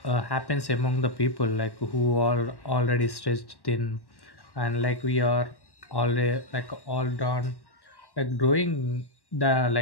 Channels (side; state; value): right; late; 1.1 ms